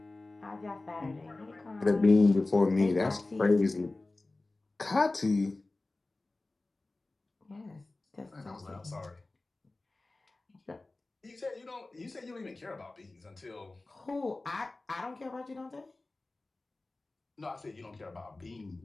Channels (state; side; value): quieter; right; 3.1 dB